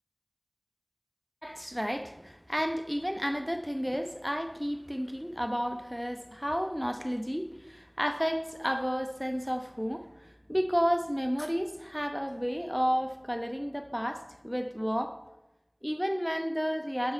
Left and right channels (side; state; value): both; identical; correlation 1.00